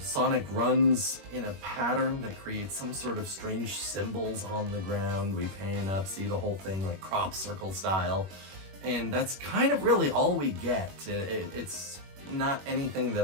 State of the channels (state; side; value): late; left; 21 ms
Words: runs in a pattern that creates some sort of strange symbols on the ground. We pan up, see the whole thing like crop circle style. And that's kind of really all we get. It's not anything